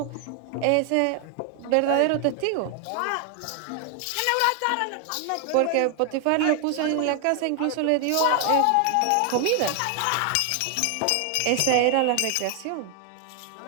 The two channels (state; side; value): different; both; correlation 0.00